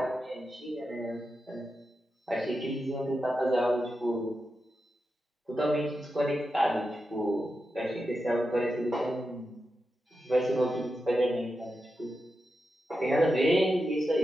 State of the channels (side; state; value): both; normal; correlation 0.89